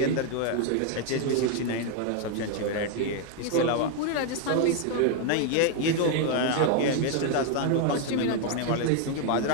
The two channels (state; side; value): different; both; correlation 0.01